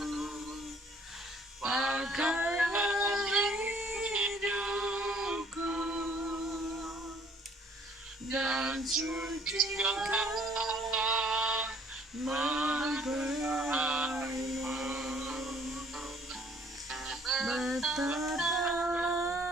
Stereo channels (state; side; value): normal; both; correlation 0.59